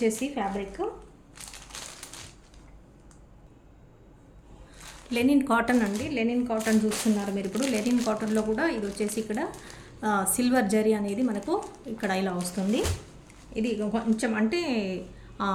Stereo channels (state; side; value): identical; both; correlation 1.00